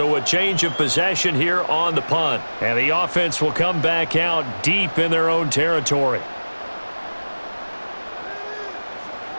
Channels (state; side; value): inverted; both; correlation -1.00